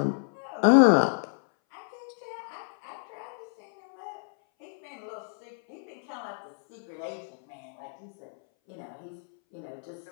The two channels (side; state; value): right; silent; 58 dB below the other